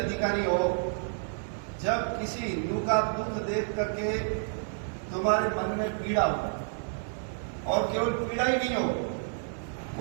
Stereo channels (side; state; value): left; silent; 58 dB below the other